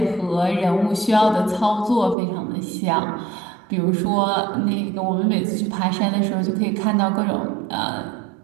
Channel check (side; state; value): left; drops out; at 2.1 s